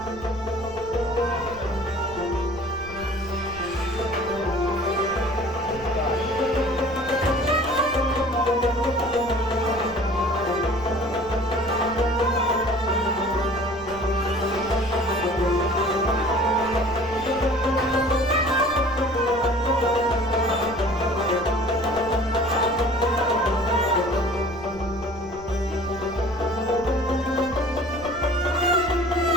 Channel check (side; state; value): right; noise; rumble, 17 dB below the sound